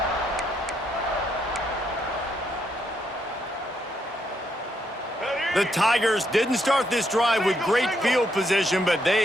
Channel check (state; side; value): normal; both; correlation 0.76